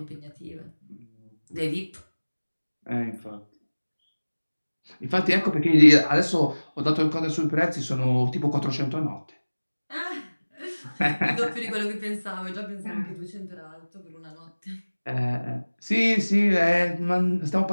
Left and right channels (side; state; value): both; inverted; correlation -1.00